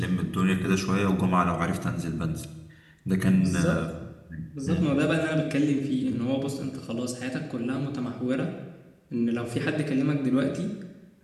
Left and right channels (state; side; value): identical; both; correlation 1.00